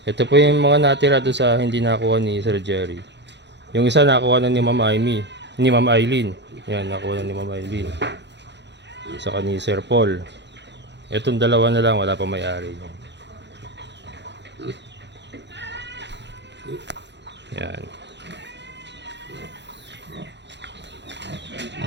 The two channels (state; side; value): late; left; 0.51 ms